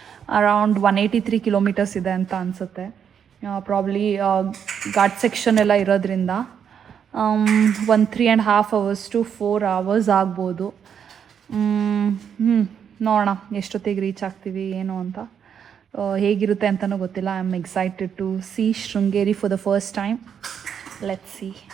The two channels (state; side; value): quieter; left; 7.9 dB